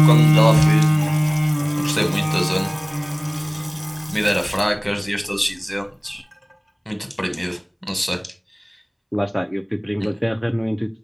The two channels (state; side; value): identical; both; correlation 1.00